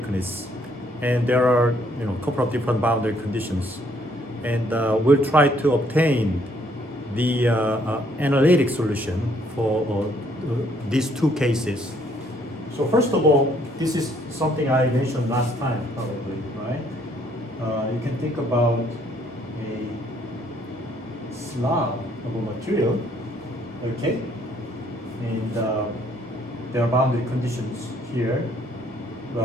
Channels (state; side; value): normal; both; correlation 0.66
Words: And there are, a couple of different boundary conditions. And we'll try to obtain the analytic solution for these two cases. So first of all, this is something I mentioned last time, probably, right? You can think about a slab of a material, okay? And there are boundary conditions here.